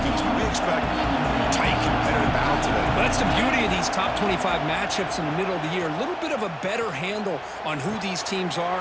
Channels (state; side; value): identical; both; correlation 1.00